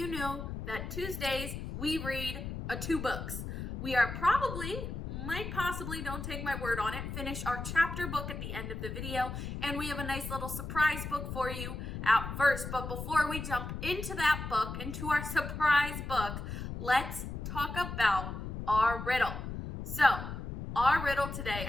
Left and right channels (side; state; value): left; noise; rumble, 6 dB below the sound